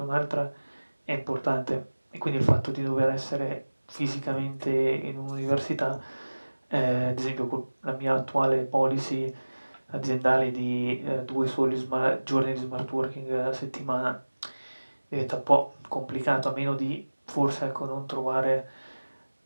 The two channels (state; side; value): inverted; both; correlation -1.00